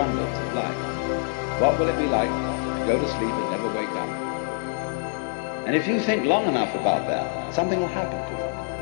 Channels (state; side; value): silent; right; digital silence